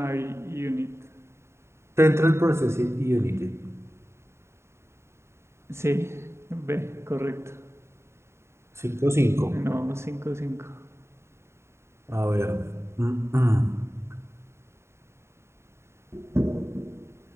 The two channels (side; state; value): left; late; 0.13 ms